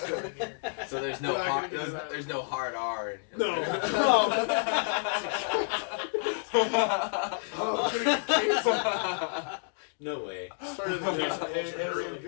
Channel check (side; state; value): right; silent; digital silence